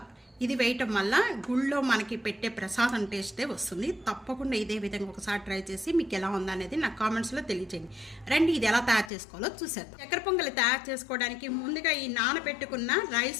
ఇది వేయటం వల్ల గుళ్ళో మనకి పెట్టే ప్రసాదం టేస్టే వస్తుంది. తప్పకుండా ఇదే విధంగా ఒకసారి ట్రై చేసి మీకు ఎలా ఉందనేది నా కామెంట్స్లో తెలియజేయండి. రండి, ఇది ఎలా తయారు చేసుకోవాలో చూసేద్దాం. చక్కెర పొంగలి తయారు చేసుకోవడానికి ముందుగా ఈ నానబెట్టుకున్న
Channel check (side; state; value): right; drops out; at 9.1 s